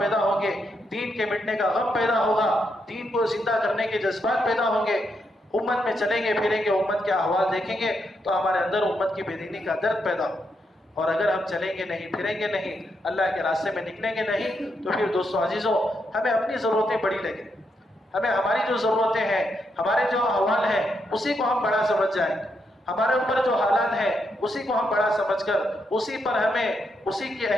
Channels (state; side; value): normal; both; correlation 0.80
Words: ہوں گے، دین کے مٹنے کا غم پیدا ہوگا، دین کو زندہ کرنے کے جذبات پیدا ہوں گے، امت میں چلیں گے پھریں گے، امت کے احوال دیکھیں گے تو ہمارے اندر امت کی بے دینی کا درد پیدا ہو۔ اور اگر ہم چلیں گے نہیں، پھریں گے نہیں، اللہ کے راستے میں نکلیں گے نہیں، تو پھر دوستو عزیزوں ہمیں اپنی ضرورتیں بڑی لگیں، ہمیں ہماری جو ضرورتیں ہیں، ہمارے جو احوال ہیں اسی کو ہم بڑا سمجھ جائیں، ہمارے اوپر جو حالات ہیں اسی کو ہم بڑا سمجھ کر اسی پر اسی کی